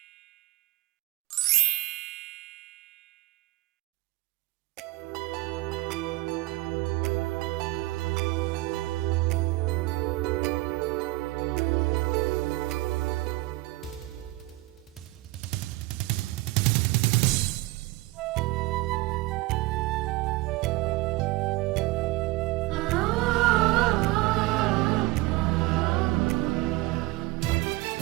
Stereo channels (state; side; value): quieter; left; 20.5 dB